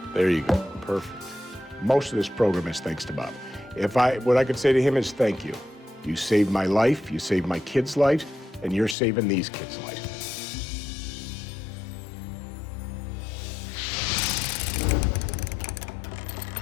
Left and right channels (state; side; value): drops out; right; at 9.0 s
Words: There you go, perfect. Most of this program is thanks to Bob. What I could say to him is thank you. You saved my life, you saved my kids' lives, and you're saving these kids' lives.